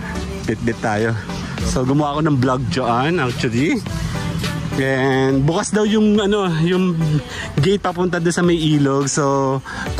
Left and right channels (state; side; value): identical; both; correlation 1.00